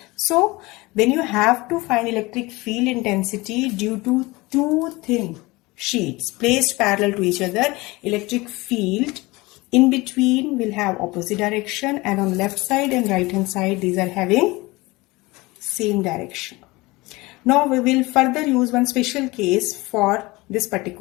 So when you have to find electric field intensity due to two thin sheets placed parallel to each other, electric field in between will have opposite direction, and on left side and right hand side these are having same direction. Now we will further use one special case for this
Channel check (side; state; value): right; quieter; 22.2 dB